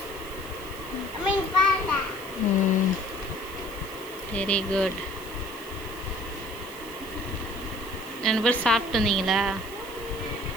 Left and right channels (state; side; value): noise; right; hiss, 17 dB below the sound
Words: Very good. 2 பேர் சாப்பிட்டு வந்தீங்களா?